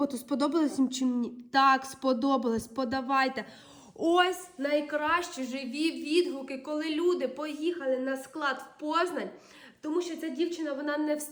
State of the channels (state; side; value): identical; both; correlation 1.00